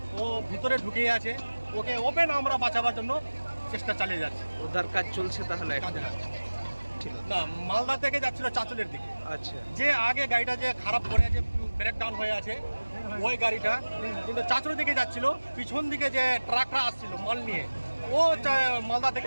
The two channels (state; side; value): inverted; both; correlation -1.00